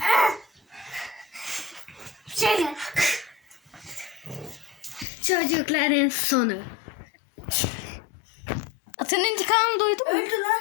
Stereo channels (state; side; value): drops out; right; at 5.1 s